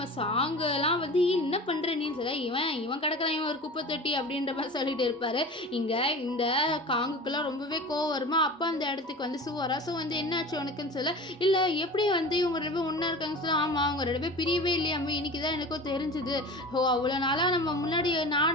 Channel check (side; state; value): both; normal; correlation 0.36